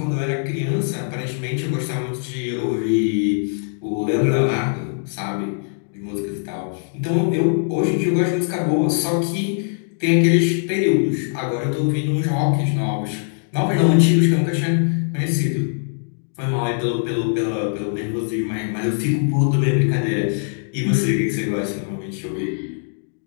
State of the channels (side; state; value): right; silent; digital silence